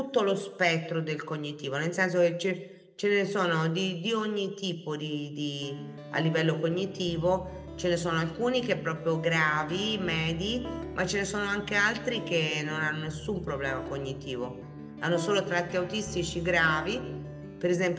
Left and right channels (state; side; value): identical; both; correlation 1.00